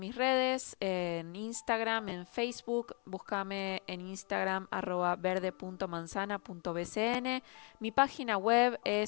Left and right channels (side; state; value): right; quieter; 34.8 dB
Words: redes, en Instagram, en Facebook. Búscame en Instagram @verde.manzana.bcn. Mi página web